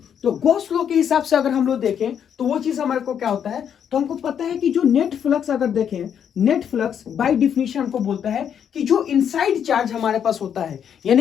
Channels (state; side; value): quieter; right; 8.4 dB